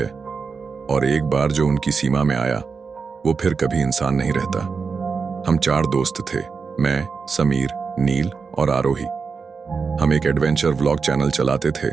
और एक बार जो उनकी सीमा में आया वो फिर कभी इंसान नहीं रहता। हम 4 दोस्त थे, मैं, समीर, नील और आरोही। हम एक एडवेंचर व्लॉग चैनल चलाते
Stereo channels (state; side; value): quieter; left; 5.2 dB